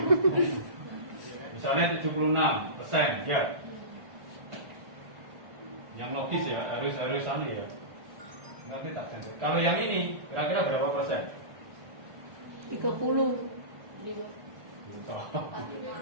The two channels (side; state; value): left; late; 1.4 ms